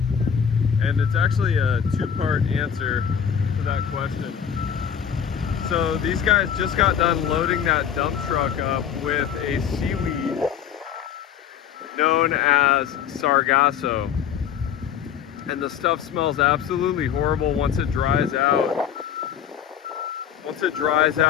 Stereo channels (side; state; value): right; quieter; 8.4 dB